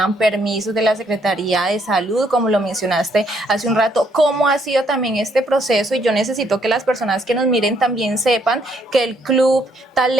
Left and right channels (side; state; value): both; normal; correlation 0.70